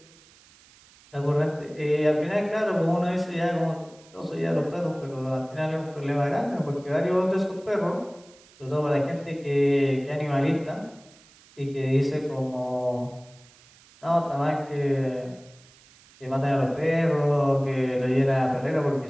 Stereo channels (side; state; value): right; noise; hiss, 26 dB below the sound